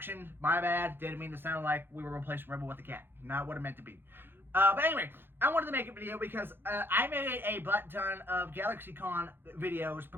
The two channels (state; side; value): late; left; 0.10 ms